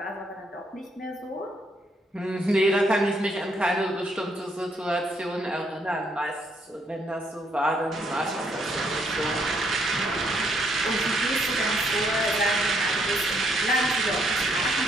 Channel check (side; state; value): both; normal; correlation 0.72